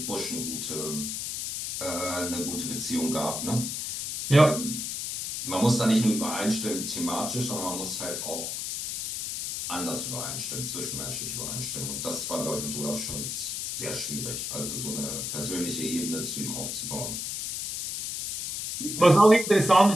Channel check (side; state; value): left; noise; hiss, 4 dB below the sound